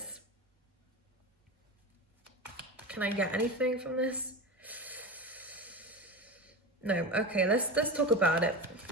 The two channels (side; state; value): both; normal; correlation 0.26